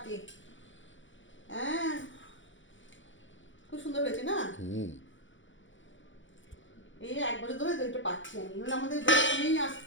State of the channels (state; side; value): late; right; 0.56 ms